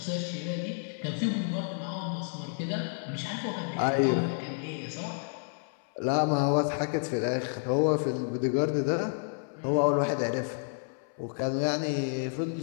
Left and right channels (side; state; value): right; silent; 58 dB below the other